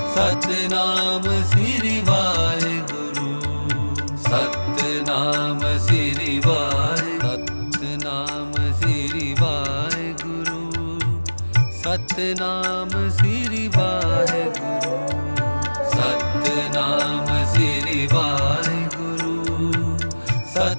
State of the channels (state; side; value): inverted; both; correlation -1.00